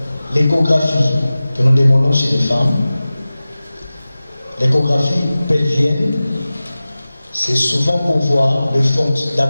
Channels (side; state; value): both; inverted; correlation -0.97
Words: l'échographie que nous demandons chez les femmes, l'échographie pelvienne, c'est souvent pour voir